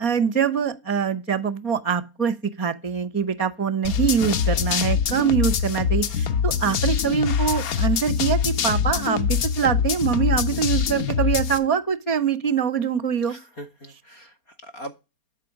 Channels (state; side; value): late; right; 4.3 ms